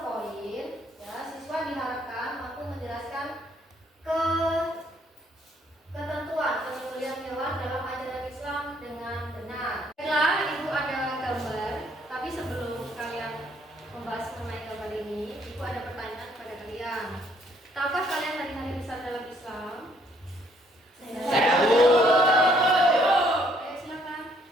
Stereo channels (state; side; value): normal; both; correlation 0.66